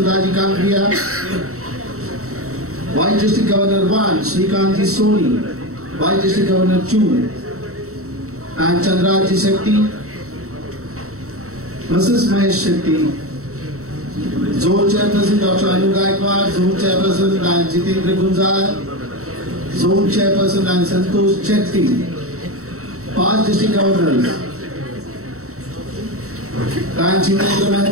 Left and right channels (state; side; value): late; left; 0.64 ms